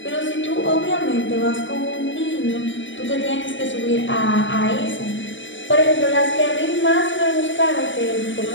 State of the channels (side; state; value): right; late; 0.55 ms